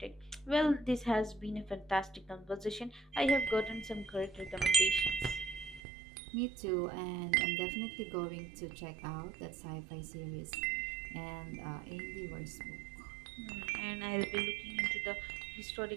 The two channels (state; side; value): drops out; left; at 5.8 s